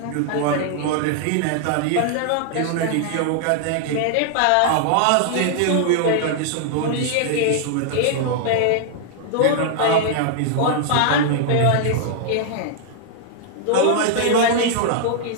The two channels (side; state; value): both; different; correlation -0.01